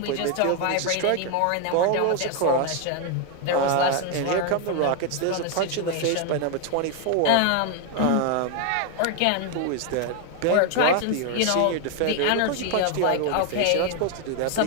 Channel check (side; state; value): both; different; correlation 0.01